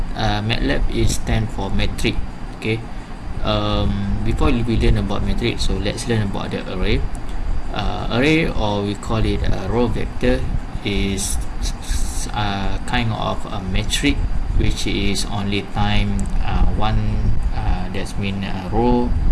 is stand for metric. Okay, before we learn about metric, so let's learn about the array. Array, or we call it a row vector, is kind of a metric which is only time one, that's mean row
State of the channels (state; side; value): identical; both; correlation 1.00